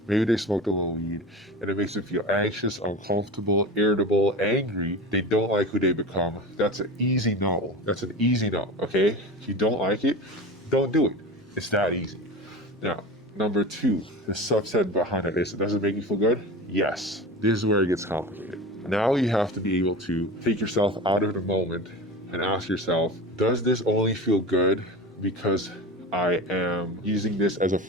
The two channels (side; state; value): both; normal; correlation 0.30